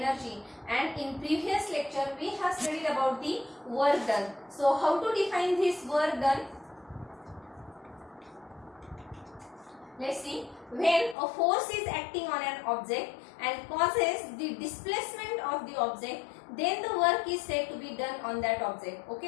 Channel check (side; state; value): right; drops out; at 11.2 s